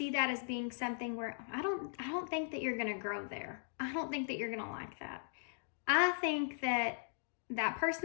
that as being something where, I don't think that you're going to grow there. I don't think that you're going to like that. I think that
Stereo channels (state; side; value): silent; right; digital silence